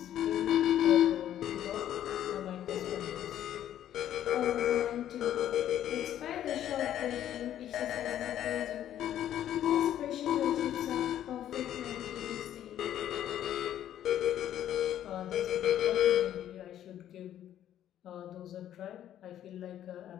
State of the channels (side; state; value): right; quieter; 11.3 dB